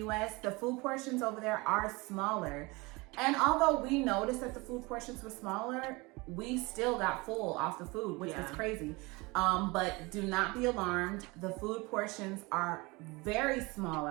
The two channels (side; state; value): left; quieter; 24.7 dB